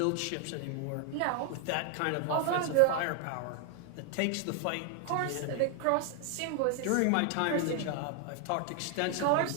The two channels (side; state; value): both; different; correlation 0.00